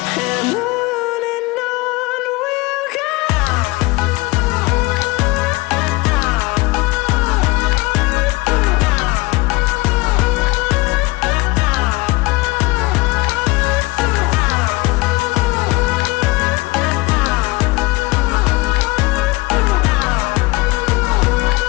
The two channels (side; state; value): right; quieter; 22.8 dB